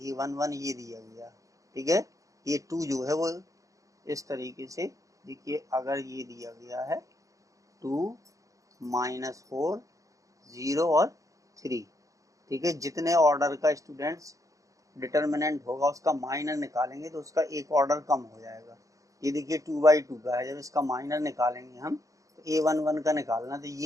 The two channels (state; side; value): late; left; 0.16 ms